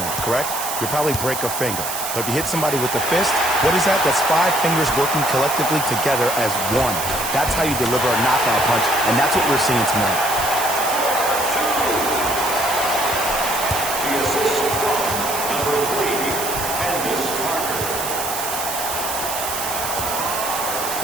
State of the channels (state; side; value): noise; right; hiss, 5 dB below the sound